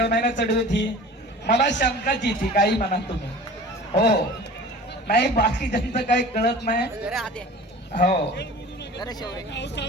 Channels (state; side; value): normal; both; correlation 0.41